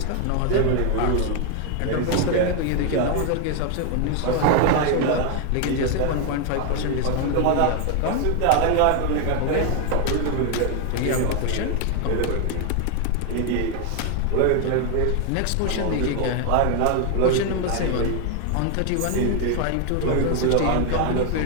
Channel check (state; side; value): different; both; correlation 0.01